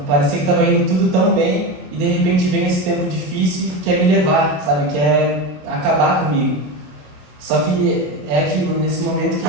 parecia que estava indo tudo tão bem, e de repente vem esse tempo difícil que quer me levar, sabe? Quer acabar comigo. Só que é aquilo, nesse momento que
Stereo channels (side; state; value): left; late; 27 ms